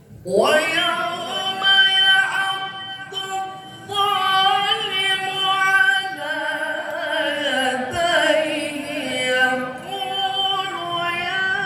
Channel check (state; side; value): identical; both; correlation 1.00